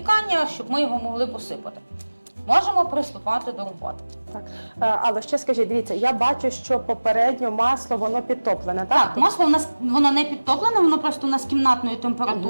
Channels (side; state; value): both; inverted; correlation -1.00